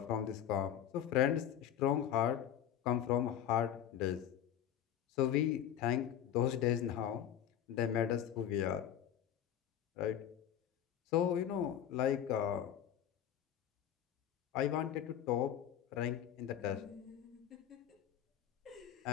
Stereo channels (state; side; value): quieter; right; 10.2 dB